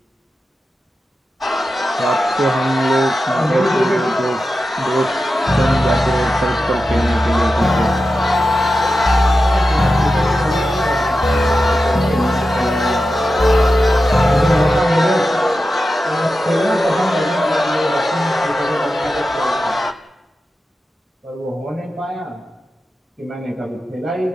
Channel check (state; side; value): normal; both; correlation 0.92